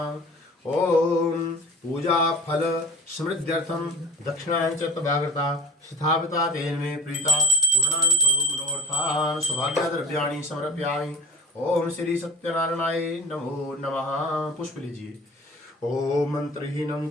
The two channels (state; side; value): normal; both; correlation 0.37